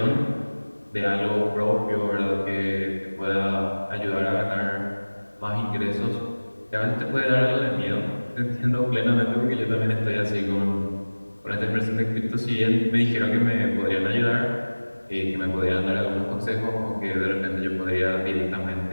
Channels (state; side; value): inverted; both; correlation -1.00